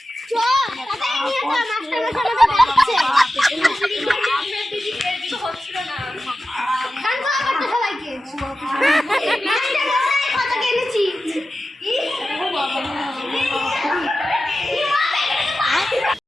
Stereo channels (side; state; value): both; normal; correlation 0.93